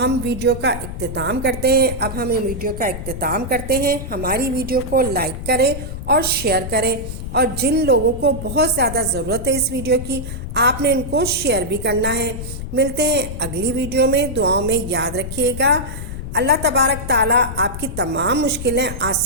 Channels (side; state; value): left; noise; rumble, 8 dB below the sound